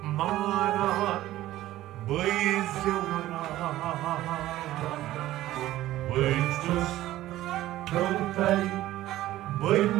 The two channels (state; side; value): quieter; left; 15.0 dB